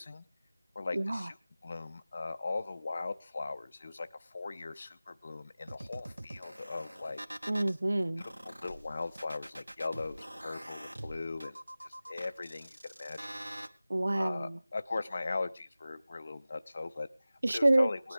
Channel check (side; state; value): both; inverted; correlation -0.97